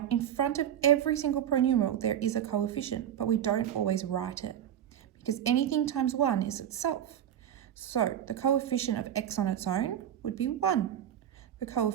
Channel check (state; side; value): quieter; left; 10.3 dB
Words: in front of every single pronumeral, there is a coefficient, but we don't always write it because anything times 1 is itself. So the coefficient of x on its own would be 1. The